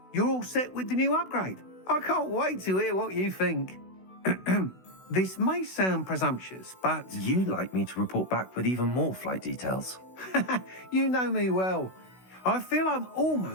you're all set with the new upgrade. I can't wait to hear what you think. This may sound presumptuous, but... You'd like me to report back with even more flight details. You know me well. I feel I'm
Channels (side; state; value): right; late; 16 ms